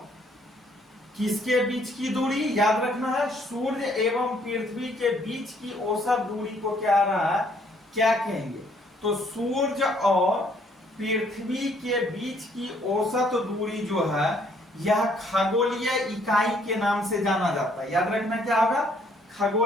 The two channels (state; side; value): normal; both; correlation 0.65